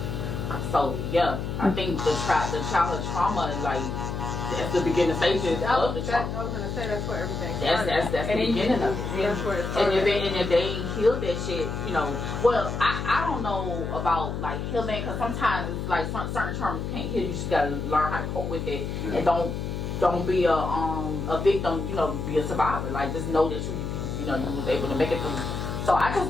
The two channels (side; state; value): left; noise; hum, 4 dB below the sound